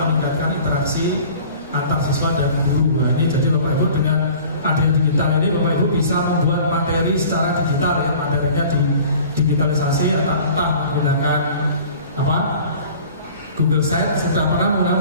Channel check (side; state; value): both; inverted; correlation -0.46